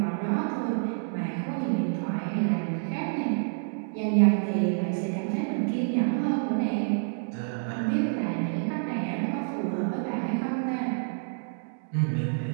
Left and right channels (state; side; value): silent; left; digital silence